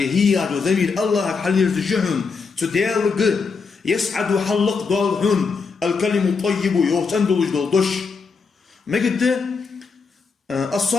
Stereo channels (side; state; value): right; quieter; 5.0 dB